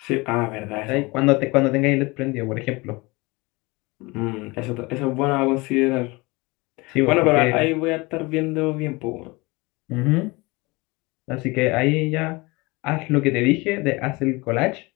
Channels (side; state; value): right; quieter; 24.4 dB